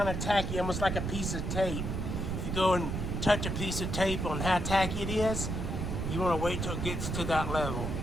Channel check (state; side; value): noise; right; rumble, 2 dB below the sound